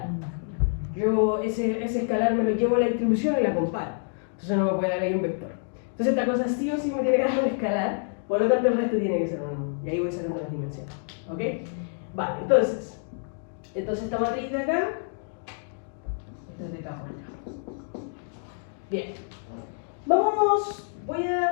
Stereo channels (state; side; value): silent; right; digital silence